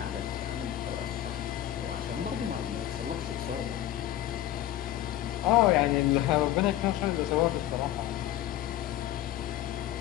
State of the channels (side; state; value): right; quieter; 13.1 dB